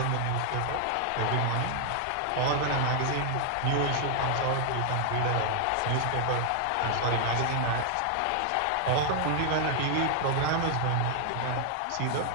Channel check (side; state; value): both; different; correlation 0.00